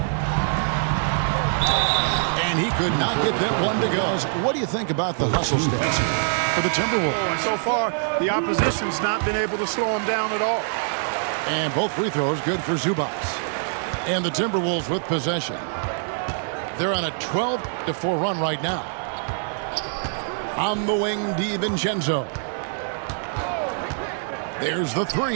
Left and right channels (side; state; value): left; silent; digital silence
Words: And he could not get that one to go. What do you think about the hustle stats for the Timberwolves? And so far, the opposition's not been able to slow him down at all. And both free throws good for Zubac. And the Timberwolves with possession. They're on a 12-4 run right now. On the wing, DiVincenzo. There's the